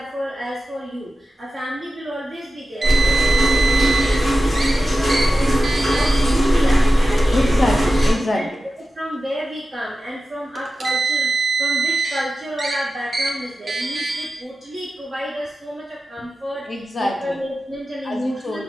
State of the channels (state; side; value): normal; both; correlation 0.93